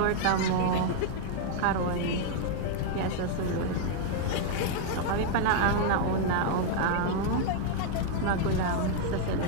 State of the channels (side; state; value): both; different; correlation 0.00